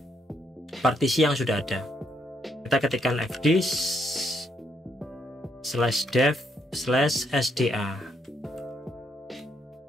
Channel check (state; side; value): normal; both; correlation 0.75